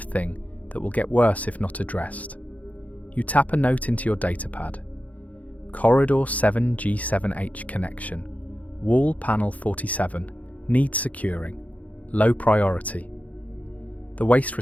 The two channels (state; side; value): late; right; 0.072 ms